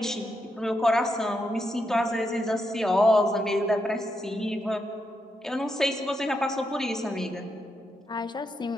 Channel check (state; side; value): normal; both; correlation 0.83